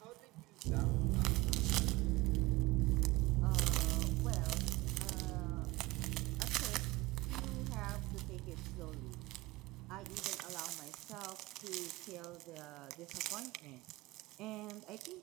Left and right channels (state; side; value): quieter; left; 21.2 dB